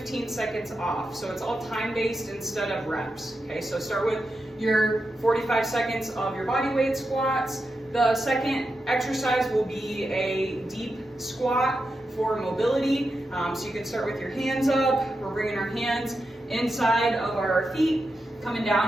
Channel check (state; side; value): normal; both; correlation 0.88